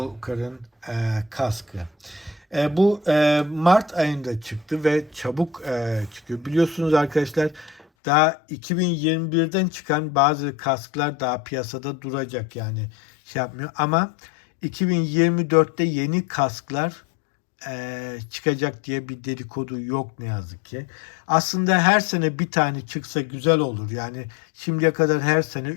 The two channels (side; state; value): right; drops out; at 7.9 s